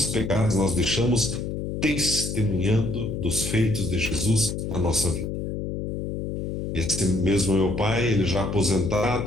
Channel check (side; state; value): left; noise; hum, 4 dB below the sound